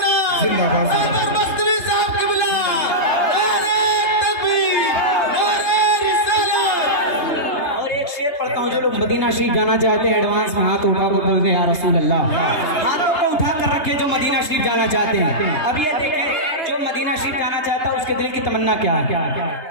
पढ़ता हूँ, जो लोग मदीना शरीफ जाना चाहते हैं एडवांस में हाथ उठा कर बोलते हैं या रसूल अल्लाह, हाथों को उठा कर रखे जो मदीना शरीफ जाना चाहते हैं। अब ये देखें जो मदीना शरीफ जाना चाहता है उसके दिल की तमन्ना क्या है?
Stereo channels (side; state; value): right; late; 3.3 ms